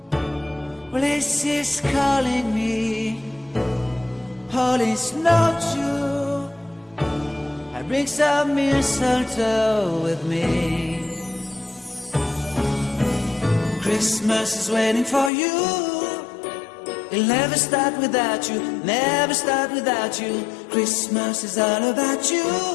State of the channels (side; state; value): right; drops out; at 15.3 s